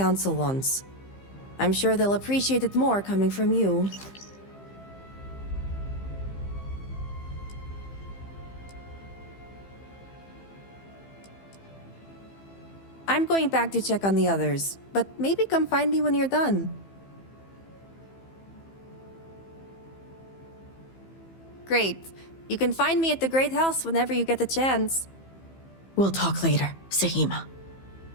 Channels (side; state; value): right; late; 15 ms